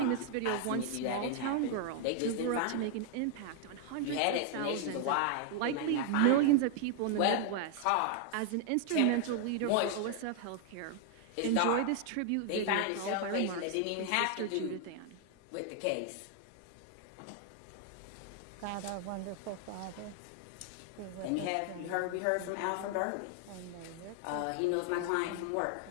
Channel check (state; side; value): different; both; correlation 0.00